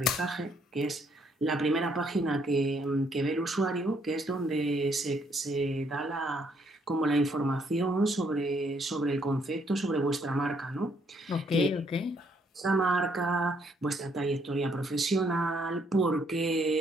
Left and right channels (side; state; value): both; normal; correlation 0.69